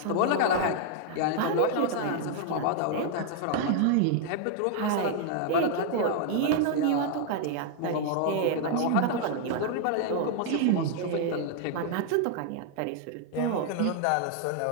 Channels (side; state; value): both; different; correlation 0.00